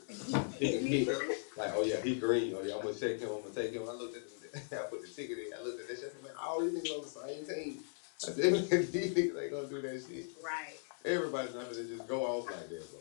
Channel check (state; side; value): silent; right; 52 dB below the other